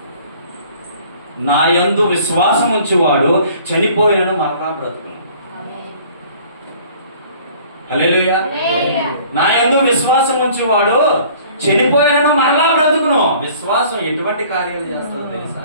నా యందు విశ్వాసం ఉంచేవాడు చనిపోయినను మరలా బ్రతుకును. హల్లెలూయా. నా యందు విశ్వాసం ఉంచేవాడు చనిపోయినను మరలా బ్రతుకును. విశ్వాసం ఎటువంటి కార్యాలు చేస్తుందో తెలుసా?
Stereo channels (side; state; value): both; inverted; correlation -0.52